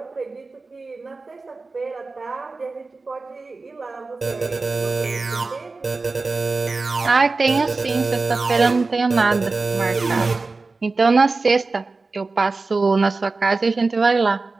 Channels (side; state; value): left; quieter; 3.8 dB